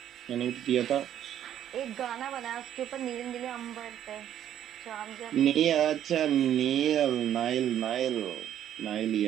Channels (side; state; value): left; quieter; 10.8 dB